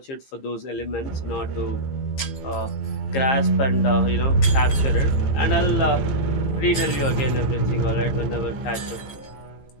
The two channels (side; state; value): right; late; 15 ms